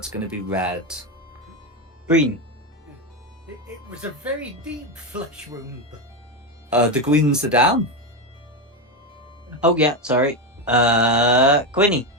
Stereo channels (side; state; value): both; normal; correlation 0.12